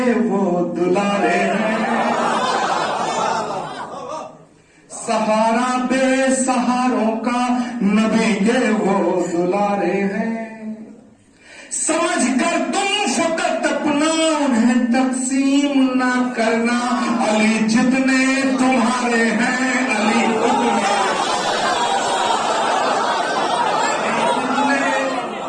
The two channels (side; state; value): both; identical; correlation 1.00